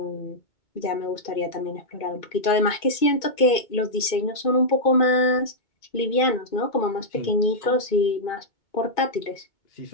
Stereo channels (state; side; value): late; right; 2.5 ms